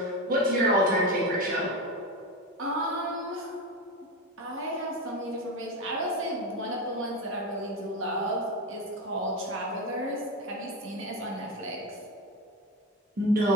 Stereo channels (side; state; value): both; normal; correlation 0.18